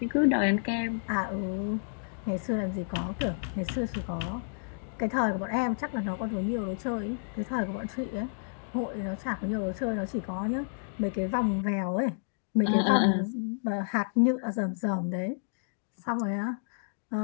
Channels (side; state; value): right; silent; digital silence